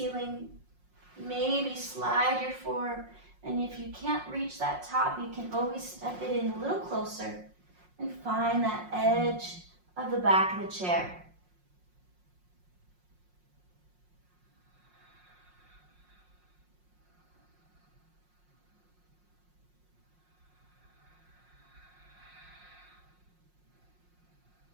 Maybe slide your forearm. And if you can't reach that top, you can always step it in a little closer and find that edge of the back of the chair.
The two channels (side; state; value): left; late; 5.5 ms